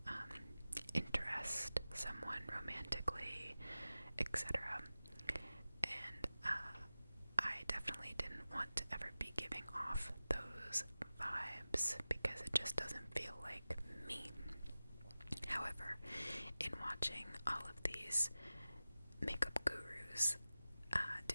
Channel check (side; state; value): both; inverted; correlation -0.96